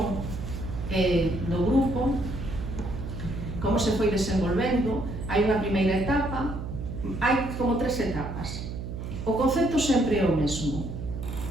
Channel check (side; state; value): right; noise; hum, 7 dB below the sound